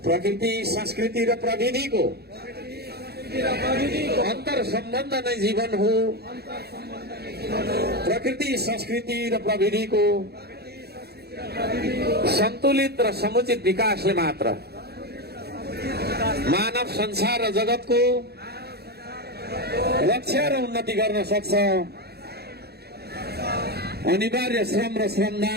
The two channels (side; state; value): left; late; 0.47 ms